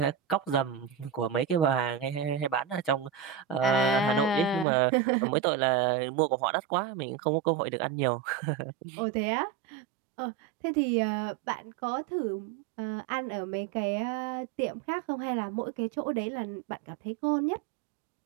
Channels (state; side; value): drops out; left; at 4.7 s